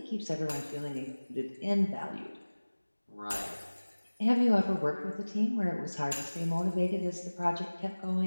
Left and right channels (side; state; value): both; inverted; correlation -1.00